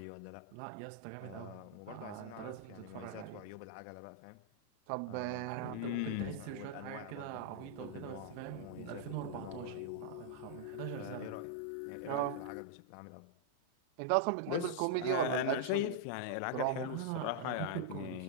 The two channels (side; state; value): both; different; correlation -0.01